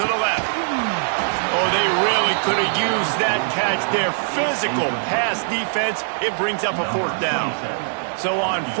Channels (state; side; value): silent; left; 65 dB below the other